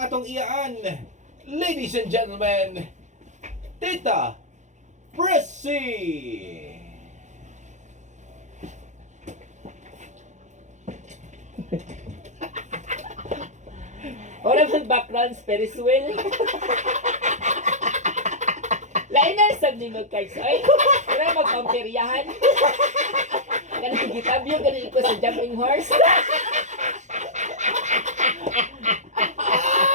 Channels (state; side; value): late; left; 0.35 ms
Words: atong iyaan. Ladies and gentlemen, Tita Pressy! Wala bang background Ferris wheel? Lain na sab ni mo cards. Ay, wala magpamperyahan. Ganun gitabyo, ganun ko sa jumping horse.